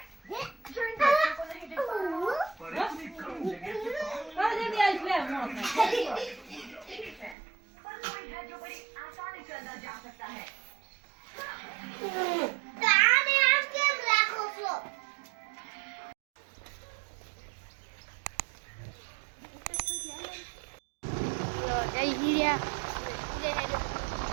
जो इन बच्चों को नहीं दिख पा पर कोई है जो बड़ी आसानी से अंदर जा सकता है.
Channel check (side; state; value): left; drops out; at 7.4 s